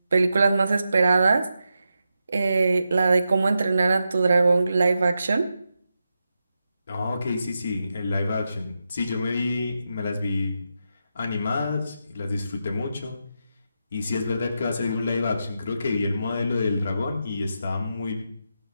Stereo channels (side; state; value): both; inverted; correlation -0.87